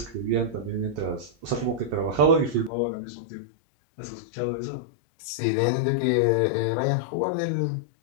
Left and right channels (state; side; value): drops out; right; at 2.7 s